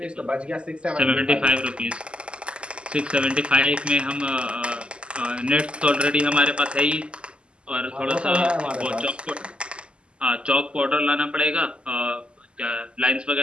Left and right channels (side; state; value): left; late; 0.052 ms